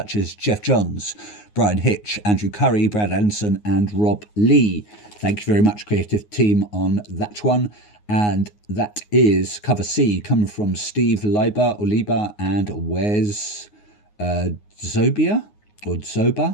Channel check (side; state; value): right; late; 9.6 ms